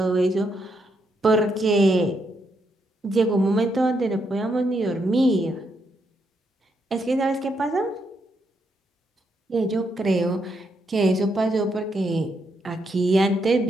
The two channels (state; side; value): normal; both; correlation 0.78